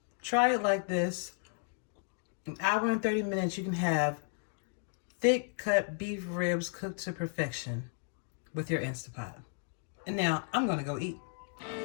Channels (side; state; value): right; silent; 55 dB below the other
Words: try it like this. An hour and 30 minutes, you can have thick cut beef ribs cooked to perfection with your InstantPot. And now I'm gonna go eat.